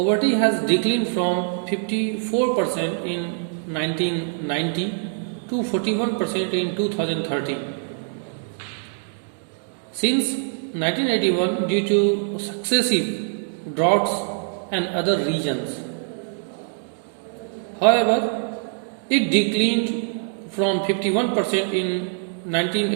has declined from 54% in 1990 to 41% in 2013. Since 1981, due to successive droughts and other regions. However, it declined from 51% in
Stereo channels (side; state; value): left; silent; digital silence